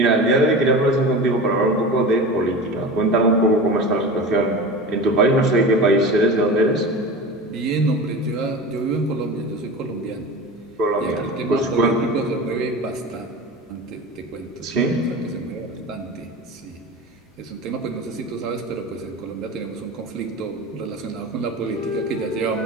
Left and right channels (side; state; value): both; normal; correlation 0.31